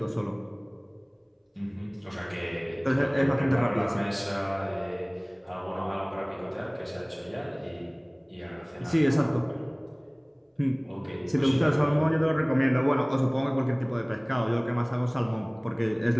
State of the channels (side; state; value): both; identical; correlation 1.00